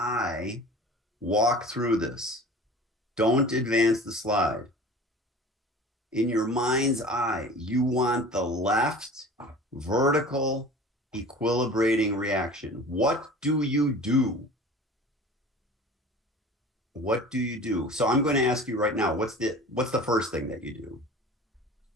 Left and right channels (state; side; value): normal; both; correlation 0.41